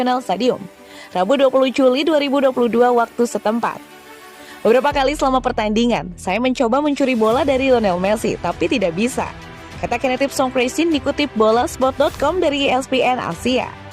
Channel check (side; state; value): both; identical; correlation 1.00